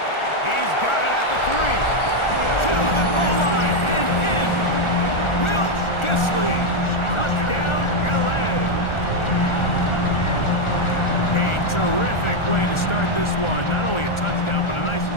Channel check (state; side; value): late; right; 1.4 ms